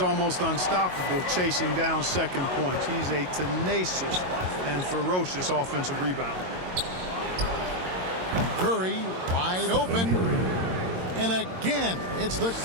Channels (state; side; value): late; left; 22 ms